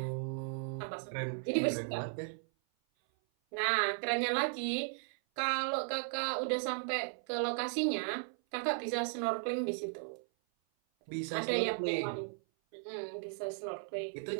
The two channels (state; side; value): silent; left; 54 dB below the other